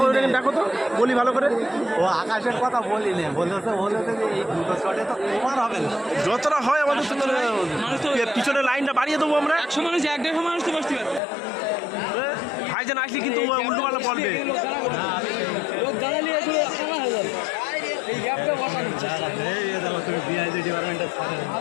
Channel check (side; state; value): right; drops out; at 11.2 s